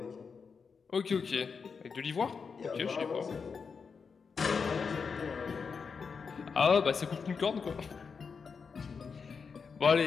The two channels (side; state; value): right; quieter; 5.6 dB